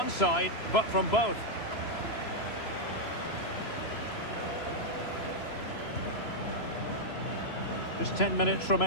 side, but from both. Just 10 minutes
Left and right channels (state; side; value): late; right; 3.0 ms